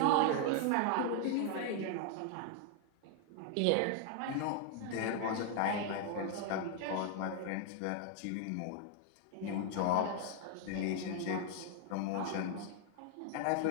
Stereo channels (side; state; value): both; different; correlation 0.00